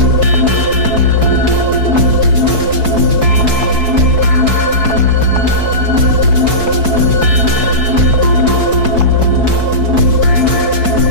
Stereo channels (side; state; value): left; late; 4.6 ms